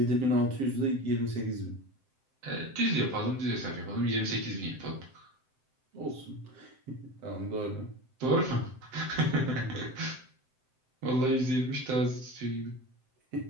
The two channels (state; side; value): late; left; 7.7 ms